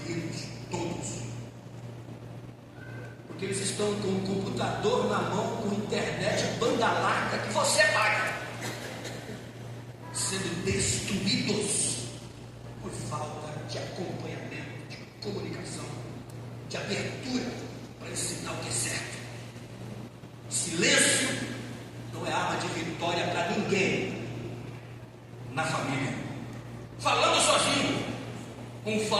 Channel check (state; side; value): identical; both; correlation 1.00